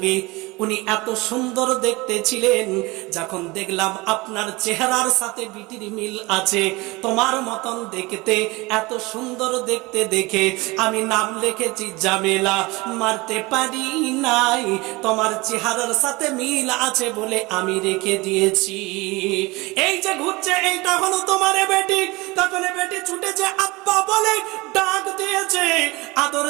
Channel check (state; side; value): quieter; left; 23.2 dB